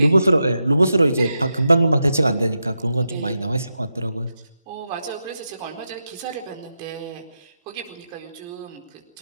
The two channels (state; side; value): inverted; both; correlation -0.88